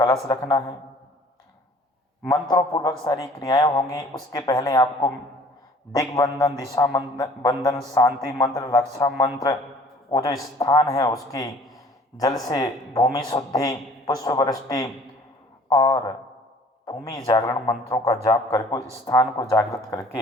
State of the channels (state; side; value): normal; both; correlation 0.52